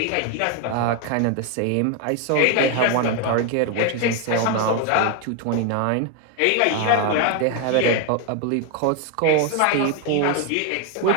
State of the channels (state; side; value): different; both; correlation 0.01